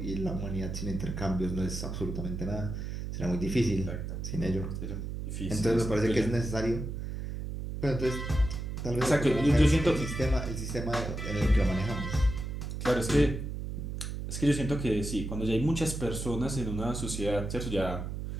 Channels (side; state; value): right; noise; hum, 5 dB below the sound